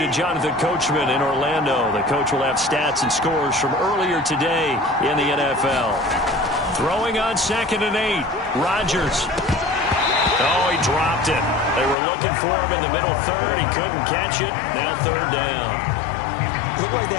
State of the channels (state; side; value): drops out; right; at 12.0 s